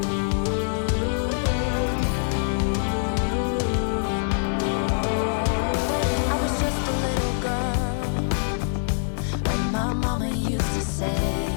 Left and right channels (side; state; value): right; silent; 57 dB below the other